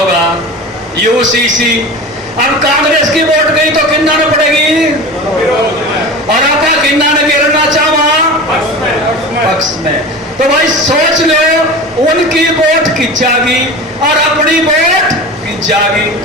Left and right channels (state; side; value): normal; both; correlation 0.32